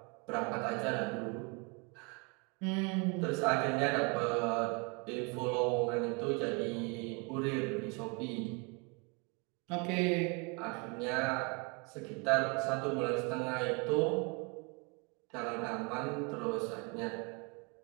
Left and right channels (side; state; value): left; quieter; 31.9 dB